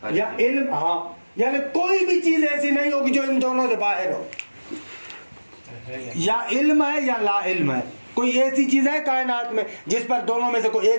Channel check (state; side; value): inverted; both; correlation -1.00